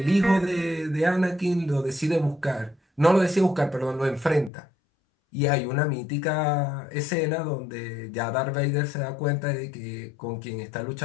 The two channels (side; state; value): right; drops out; at 4.5 s